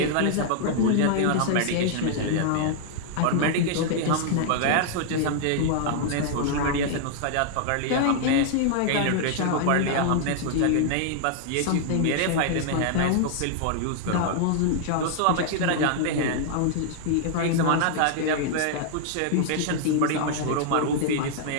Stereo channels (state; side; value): different; both; correlation -0.01